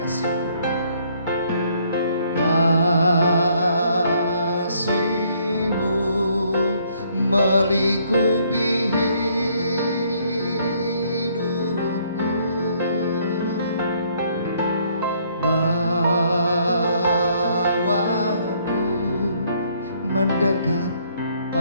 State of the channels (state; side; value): inverted; both; correlation -0.66